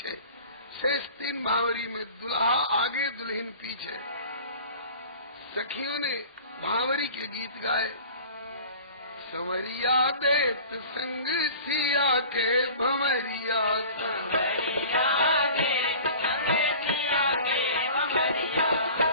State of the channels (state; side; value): inverted; both; correlation -0.42